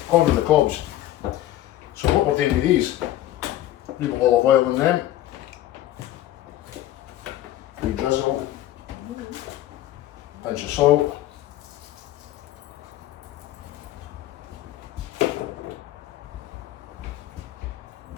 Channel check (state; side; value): quieter; right; 13.9 dB